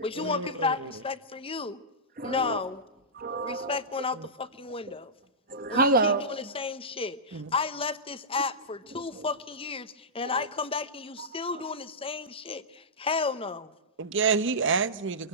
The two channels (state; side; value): normal; both; correlation -0.14